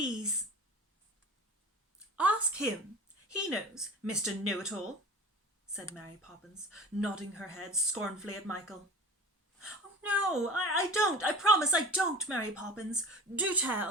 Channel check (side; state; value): both; normal; correlation 0.38